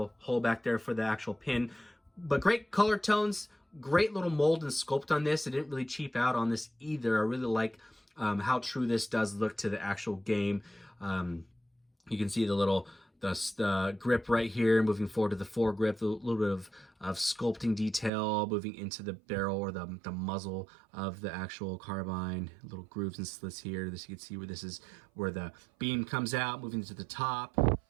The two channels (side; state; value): left; drops out; at 18.1 s